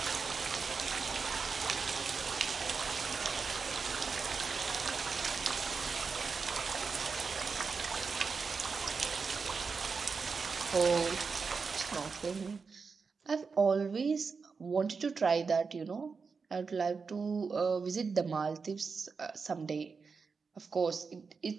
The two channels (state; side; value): quieter; left; 5.0 dB